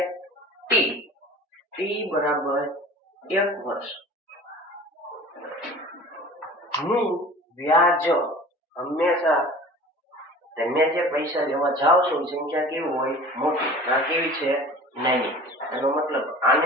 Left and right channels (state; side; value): normal; both; correlation 0.41